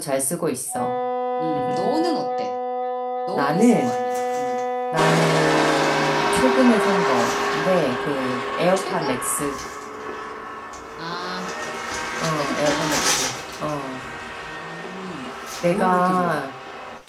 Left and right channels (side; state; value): both; identical; correlation 1.00